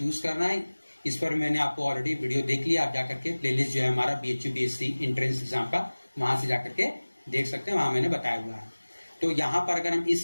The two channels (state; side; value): inverted; both; correlation -1.00